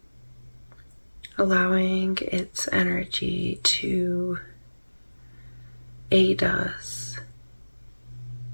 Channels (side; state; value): both; inverted; correlation -1.00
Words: allowing its energy to aid us